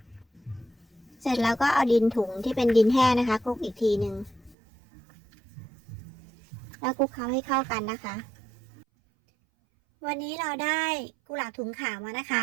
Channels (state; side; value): drops out; left; at 4.5 s